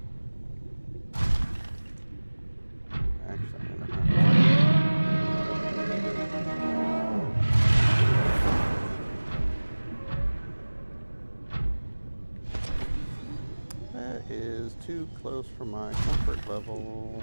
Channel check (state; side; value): inverted; both; correlation -1.00